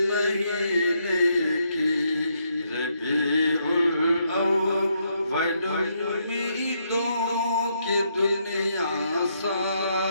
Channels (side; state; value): both; inverted; correlation -0.76